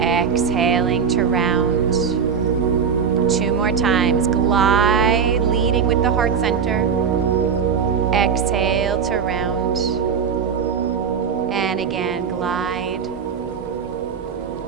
to round. 2 more times. Glide, leading with the heart center. Exhale to round. And again, glide.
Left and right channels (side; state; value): left; quieter; 6.7 dB